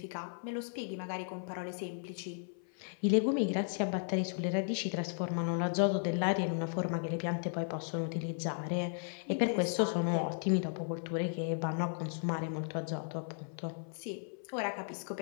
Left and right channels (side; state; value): right; silent; 54 dB below the other